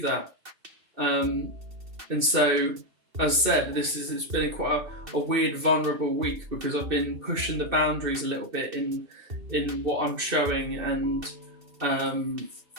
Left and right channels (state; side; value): late; left; 2.6 ms